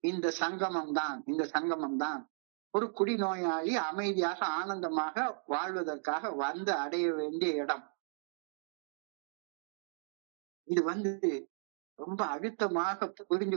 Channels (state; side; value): silent; left; digital silence